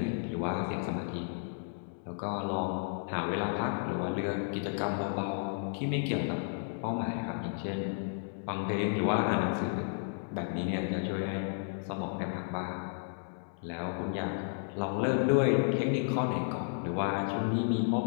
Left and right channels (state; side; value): silent; right; 56 dB below the other